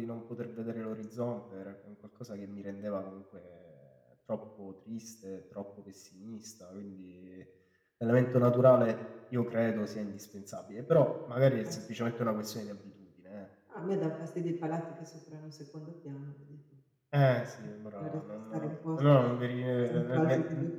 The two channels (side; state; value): both; identical; correlation 1.00